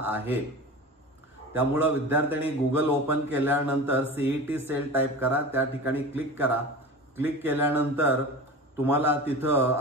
आहे। त्यामुळे विद्यार्थ्यांनी गूगल ओपन केल्यानंतर सीईटी सेल टाइप करा, त्या ठिकाणी क्लिक करा। क्लिक केल्यानंतर तुम्हाला तिथं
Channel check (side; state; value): both; normal; correlation 0.33